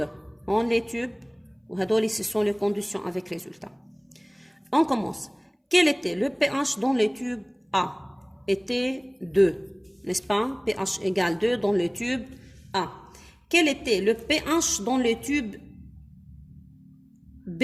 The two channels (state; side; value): identical; both; correlation 1.00